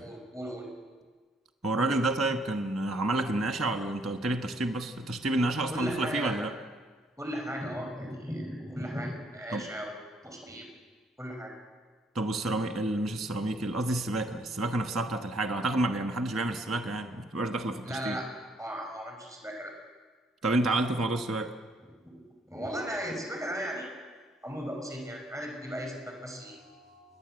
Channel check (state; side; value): normal; both; correlation 0.68